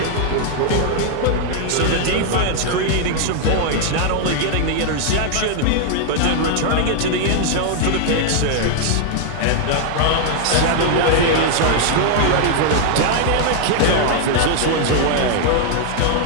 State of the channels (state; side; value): different; both; correlation 0.00